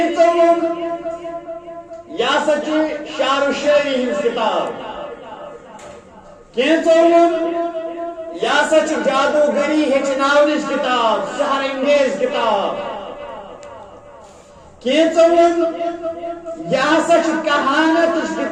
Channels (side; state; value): both; identical; correlation 1.00